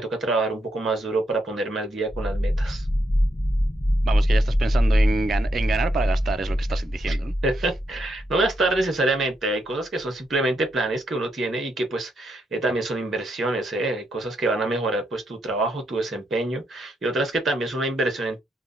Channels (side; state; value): both; normal; correlation 0.80